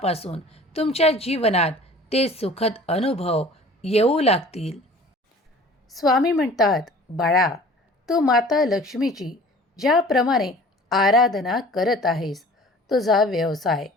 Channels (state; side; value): normal; both; correlation 0.47